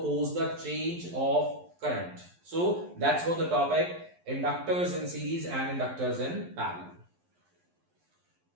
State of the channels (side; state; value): left; late; 11 ms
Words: the change of current. So that's what the topic, inductors in series and inductors in parallel.